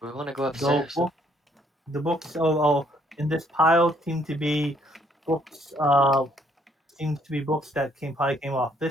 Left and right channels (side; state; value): both; normal; correlation 0.67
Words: We want to go The upstairs. book, the books in this pile seem to be books. Seems to be books that probably came off